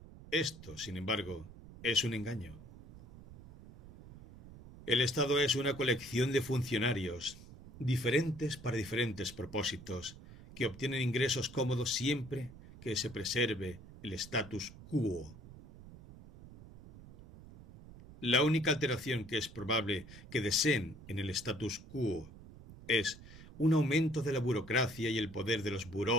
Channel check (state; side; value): noise; right; rumble, 17 dB below the sound